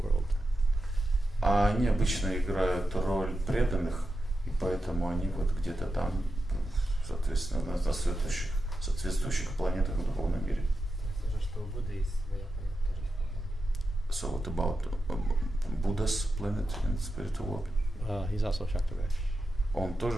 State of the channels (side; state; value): both; normal; correlation 0.89